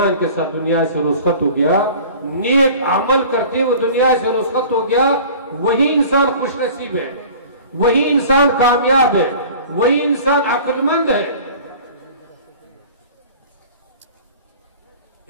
کے ساتھ دنیا سے رخصت ہو گیا, نیک عمل کرتے وہ دنیا سے رخصت ہو گیا. وہی انسان خوش نصیب ہے, وہی انسان کامیاب ہے, وہی انسان عقل مند ہے.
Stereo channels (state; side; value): inverted; both; correlation -0.44